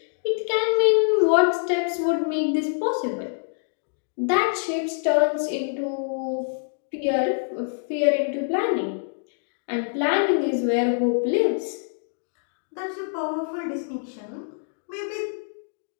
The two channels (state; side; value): silent; right; digital silence